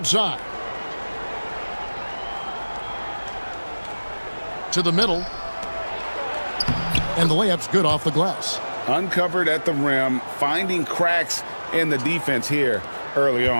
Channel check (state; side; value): inverted; both; correlation -1.00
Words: To the middle. And the layup's good off the glass. Uncovered at the rim, finding cracks in the defense here early